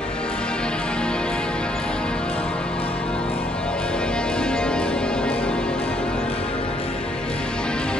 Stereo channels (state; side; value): normal; both; correlation 0.69